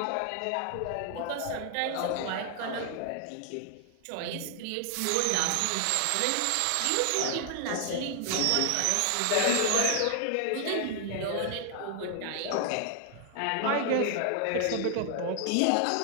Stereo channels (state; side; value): different; both; correlation 0.00